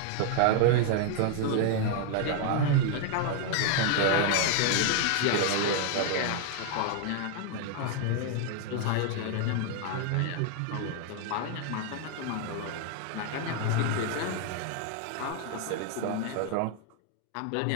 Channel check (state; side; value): different; both; correlation 0.00